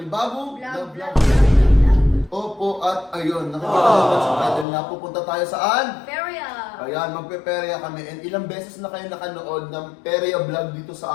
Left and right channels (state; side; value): drops out; right; at 4.7 s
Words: Vlog. Opo, at ayun, nakikita naman sa title na pupunta tayo saan? Feria. Ayan, magpe-perya kami. And ilang beses na kayo nakanood ng perya vlog dito